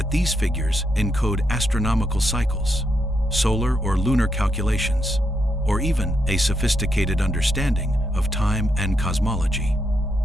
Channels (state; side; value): normal; both; correlation 0.80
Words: these figures encode astronomical cycles, solar or lunar calculations, or even a sophisticated understanding of time and cosmology.